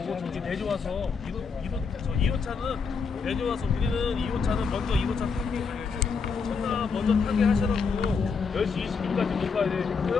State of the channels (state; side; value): quieter; right; 5.3 dB